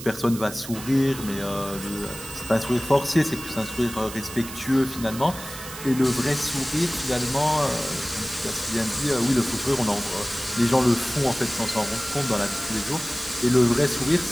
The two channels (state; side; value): noise; right; hiss, 12 dB below the sound